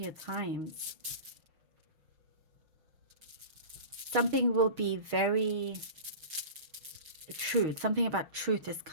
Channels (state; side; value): late; left; 6.4 ms